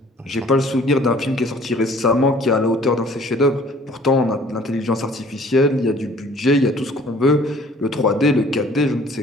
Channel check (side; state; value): both; normal; correlation 0.54